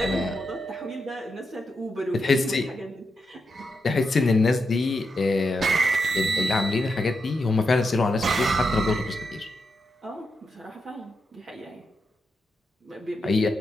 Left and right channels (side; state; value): both; normal; correlation 0.85